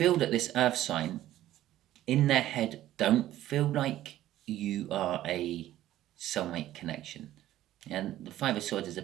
that this earth sign, in their head, don't feel like you are a soulmate connection. And the Five of Swords is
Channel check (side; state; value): left; quieter; 13.8 dB